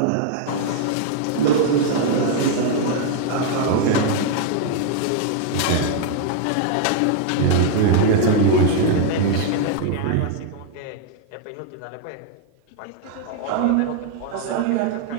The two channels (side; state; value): both; different; correlation 0.00